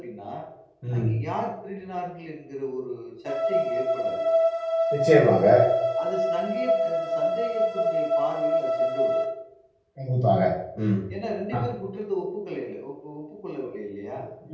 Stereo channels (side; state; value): both; identical; correlation 1.00